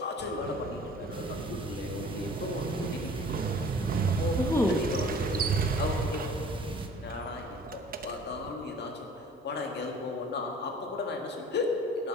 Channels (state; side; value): normal; both; correlation 0.48